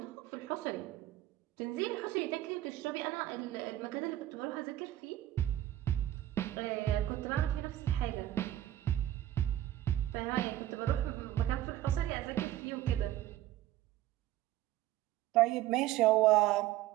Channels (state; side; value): quieter; left; 13.9 dB